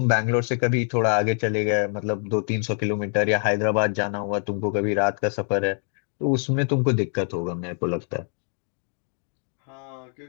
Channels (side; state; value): right; silent; 57 dB below the other